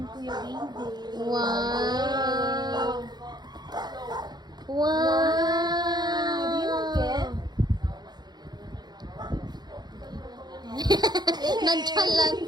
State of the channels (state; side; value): late; left; 0.20 ms